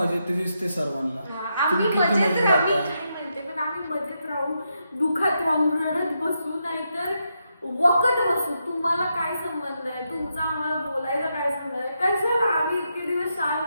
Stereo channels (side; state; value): both; inverted; correlation -0.83